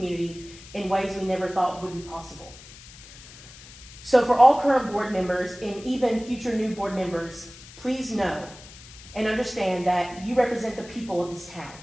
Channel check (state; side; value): noise; left; hiss, 19 dB below the sound